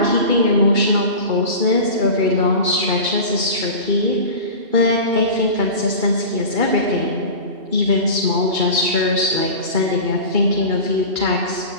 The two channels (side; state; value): left; late; 2.7 ms